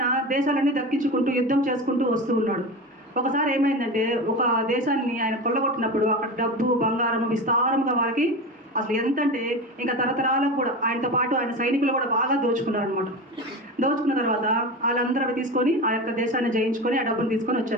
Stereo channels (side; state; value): both; normal; correlation 0.26